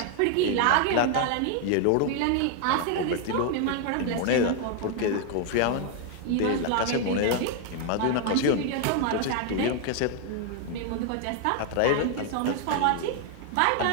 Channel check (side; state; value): both; different; correlation 0.00